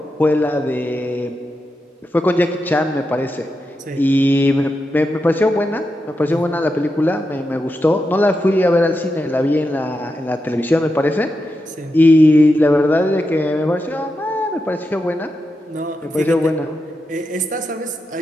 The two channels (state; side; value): normal; both; correlation 0.87